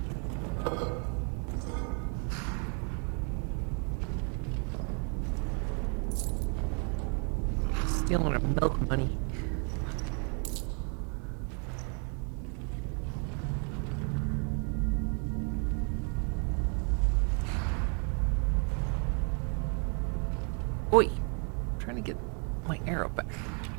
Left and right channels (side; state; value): left; quieter; 38.4 dB